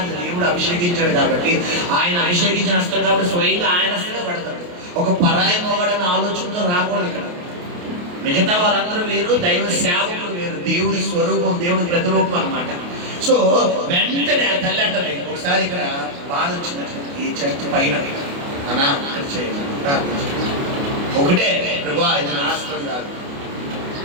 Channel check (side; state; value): left; late; 28 ms